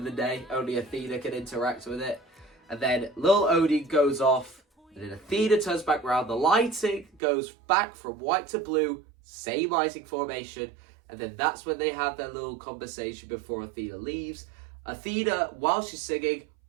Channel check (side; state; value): left; drops out; at 7.2 s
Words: the day. Only Athena can interact with it. And then Lil Odie goes off. And then Athena turns back around. The lighting goes back from white to blue. Same lighting formation. And then that's when they have their little conversation before Athena leaves. Athena, while she's singing,